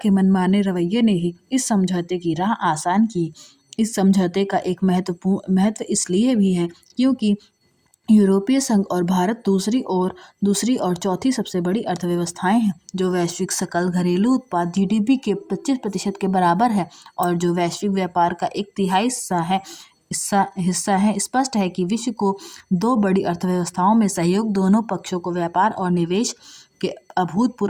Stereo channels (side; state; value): both; identical; correlation 1.00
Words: मनमाने रवैये ने ही इस समझौते की राह आसान की। इस समझौते का एक महत्व इसलिए भी है क्योंकि यूरोपीय संघ और भारत दूसरी और चौथी सबसे बड़ी अर्थव्यवस्थाएं हैं, जो वैश्विक सकल घरेलू उत्पाद GDP के 25% के बराबर है और जो वैश्विक व्यापार का एक तिहाई हिस्सा है। स्पष्ट है कि विश्व को दो बड़ी अर्थव्यवस्थाओं में सहयोग दोनों पक्षों को व्यापार और निवेश के